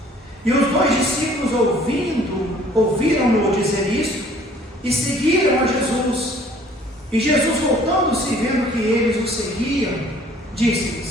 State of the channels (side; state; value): both; normal; correlation 0.56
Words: E os dois discípulos, ouviram-no dizer isto, e seguiram a Jesus. E Jesus, voltando-se e vendo que eles o seguiam,